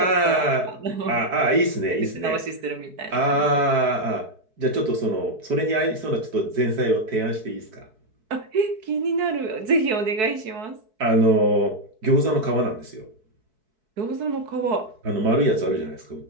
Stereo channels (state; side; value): late; left; 4.6 ms